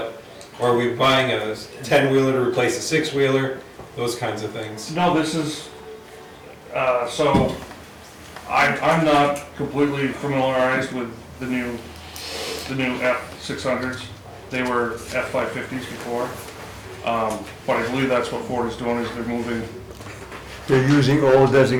or are we buying a 10-wheeler to replace a 6-wheeler? Those kinds of things. No, this is, so I'm not completely familiarized with the new F600s. They were F550s before. But I believe that's what Ford is doing, is they're moving. They're using old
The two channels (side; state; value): both; identical; correlation 1.00